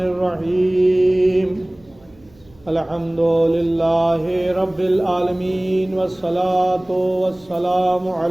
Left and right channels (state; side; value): noise; right; hum, 29 dB below the sound